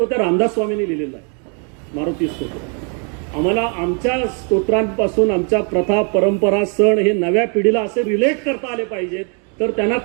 त्या रामदास स्वामींनी लिहिलेला आहे. मारुती स्तोत्र. आम्हाला आमच्या स्तोत्रांपासून आमच्या प्रथा, परंपरा, सण हे नव्या पिढीला असे रिलेट करता आले पाहिजेत. तर त्यांना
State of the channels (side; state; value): left; quieter; 39.0 dB